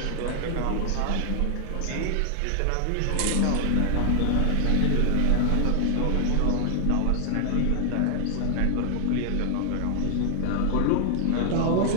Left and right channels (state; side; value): different; both; correlation 0.00